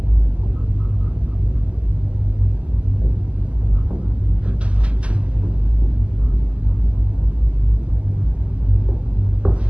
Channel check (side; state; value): left; late; 0.059 ms